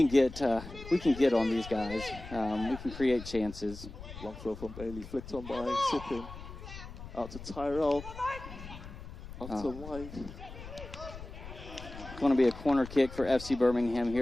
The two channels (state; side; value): noise; left; rumble, 13 dB below the sound